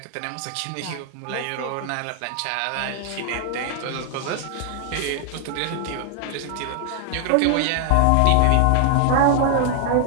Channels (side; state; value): both; different; correlation 0.00